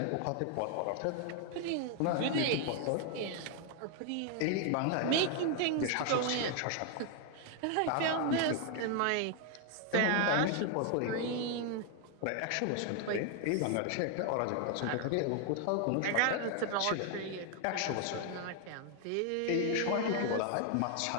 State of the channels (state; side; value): different; both; correlation 0.00